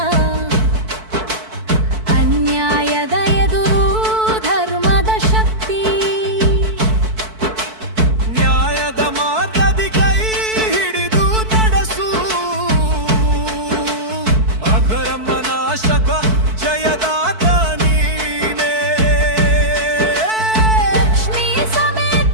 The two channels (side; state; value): left; late; 4.6 ms